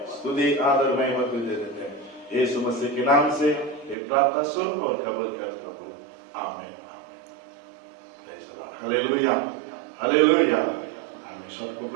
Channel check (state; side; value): drops out; left; at 4.0 s